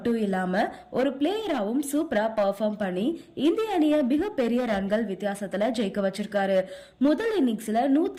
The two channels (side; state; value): both; identical; correlation 1.00